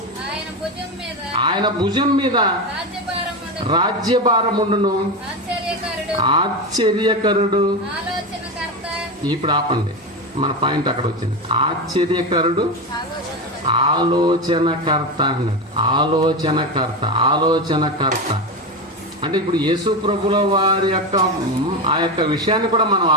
ఆయన భుజం మీద రాజ్యభారముండును, ఆశ్చర్యకరుడు. ఇప్పుడు ఆపండి, మన పాయింట్ అక్కడ వచ్చింది. ఆశ్చర్యకరుడు, ఆలోచనకర్త అన్నాడు. ఆలోచనకర్త అంటే ఇప్పుడు యేసు ప్రభుల వారి యొక్క ఆ యొక్క విషయాన్ని కూడా మనం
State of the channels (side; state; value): both; normal; correlation 0.17